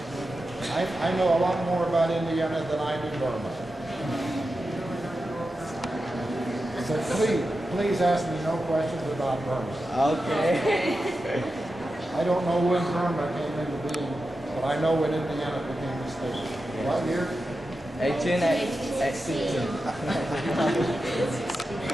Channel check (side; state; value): both; normal; correlation 0.91